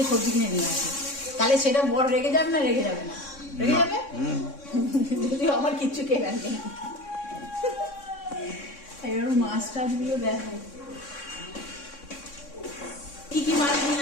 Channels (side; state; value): right; late; 3.6 ms